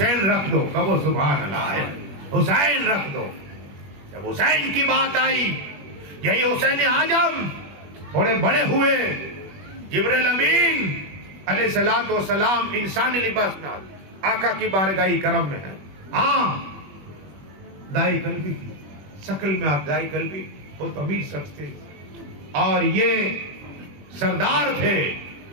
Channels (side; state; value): left; late; 21 ms